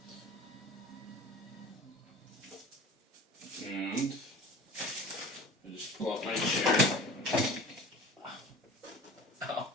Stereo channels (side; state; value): both; normal; correlation 0.40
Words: And I just pull up my chair. Ow.